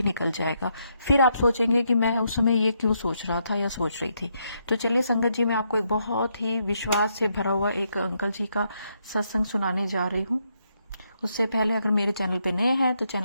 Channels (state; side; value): inverted; both; correlation -0.77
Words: निकल जाएगा। फिर आप सोचेंगे कि मैं उस समय ये क्यों सोच रहा था या सोच रही थी। तो चलिए संगत जी, मैं आपको एक बहुत ही विश्वास से भरा हुआ एक अंकल जी का सत्संग सुनाने जा रही हूँ। उससे पहले अगर मेरे चैनल पे नए हैं तो